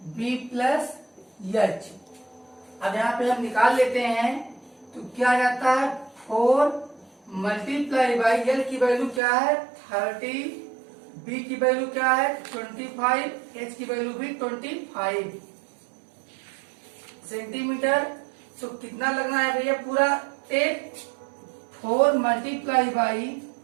B plus H। अब यहाँ पे हम निकाल लेते हैं तो क्या आ जाता है 4 मल्टीप्लाई बाई L की वैल्यू क्या है 30, B की वैल्यू क्या है 25, H की वैल्यू भी 25 सेंटीमीटर। तो कितना लगना है भैया पूरा टेप 4 मल्टीप्लाई बाई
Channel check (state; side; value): drops out; left; at 9.2 s